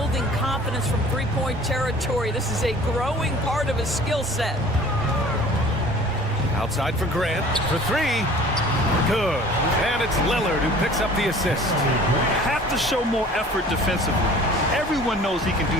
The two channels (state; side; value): normal; both; correlation 0.47